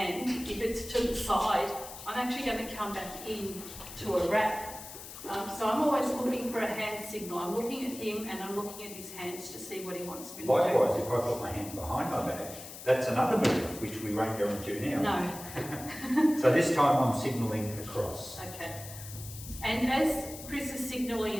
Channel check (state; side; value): noise; left; hiss, 13 dB below the sound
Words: if it's to the side, I'm actually going to come back in to a wrap. So I'm always looking for a hand signal. I'm looking at him and I'm looking at his hands to see what he wants me to do. Likewise, if I put my hand behind my back, that's another move, which we won't go into now. No. So this time I'm signalling across. Okay. And as Chris is